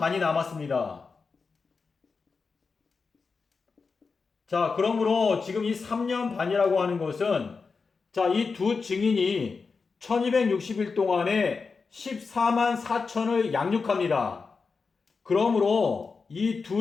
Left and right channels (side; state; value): right; quieter; 4.8 dB